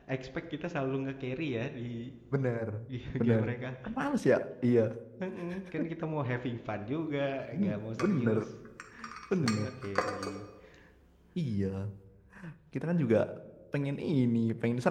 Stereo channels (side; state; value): both; identical; correlation 1.00